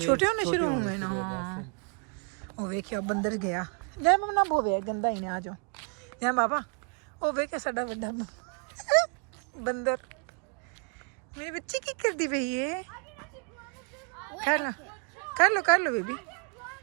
होने शुरू होने हुए ना शुरू हो गए हाँ थे। ओ वेखियो बंदर गया जाने बाबा ना बोवे गंदा ही ने आ जाओ जाने बाबा ओ वेखे साडा वड्डा बंदर मेरी बच्ची की करदी पई है कर लो बेबी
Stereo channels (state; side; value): quieter; left; 39.3 dB